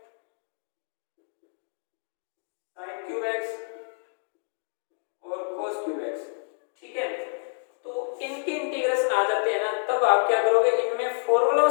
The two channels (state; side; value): silent; right; digital silence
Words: sin cube x और cos क्यूब x, ठीक है। तो इनके इंटीग्रेशन आ जाते हैं ना, तब आप क्या करोगे, इनमें फॉर्मूलों